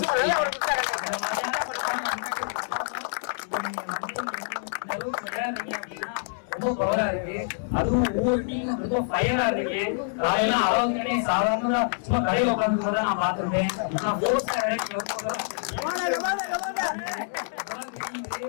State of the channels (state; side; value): silent; right; 60 dB below the other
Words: ரொம்ப பவரா இருக்கு. அதுவும் ஒவ்வொரு டீம் ரொம்ப ஃபயரா இருக்கு. காலையில அவங்க சாதாரண சும்மா கடையில உட்காந்து நான் பார்த்துருக்கேன்.